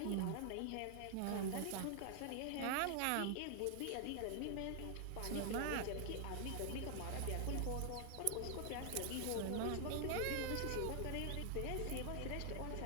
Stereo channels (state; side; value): different; both; correlation 0.00